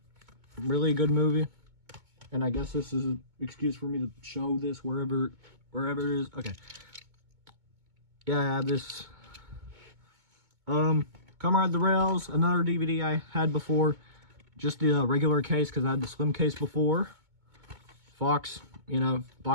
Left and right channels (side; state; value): left; late; 2.2 ms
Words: really a good movie. And I guess this is an excuse for me to show this wherever it is. Okay. Yeah, I have this. Come Ride the Rails, another DVD I had before. Just the regular case because I had the slim case before. Fox, you know,